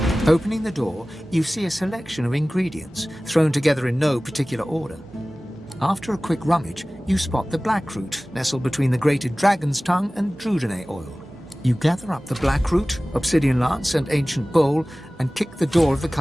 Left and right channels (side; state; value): both; normal; correlation 0.98